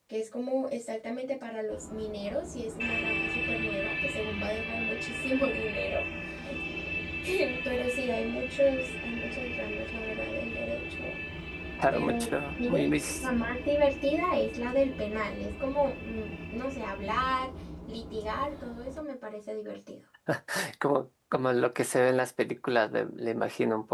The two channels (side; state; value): both; identical; correlation 1.00